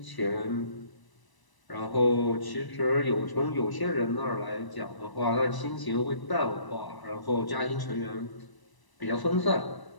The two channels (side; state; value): right; late; 1.0 ms